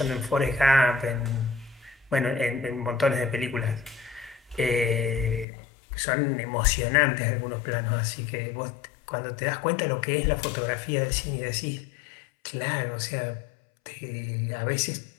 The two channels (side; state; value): right; drops out; at 5.5 s